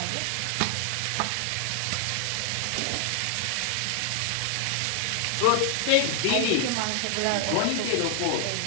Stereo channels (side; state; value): both; different; correlation 0.00